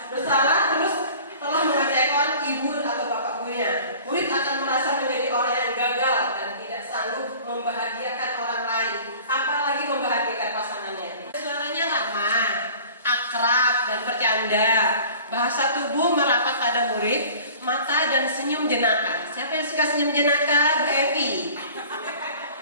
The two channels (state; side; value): inverted; both; correlation -0.45